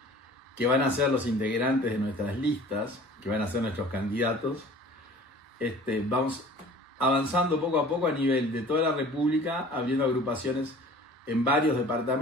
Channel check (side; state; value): both; normal; correlation 0.46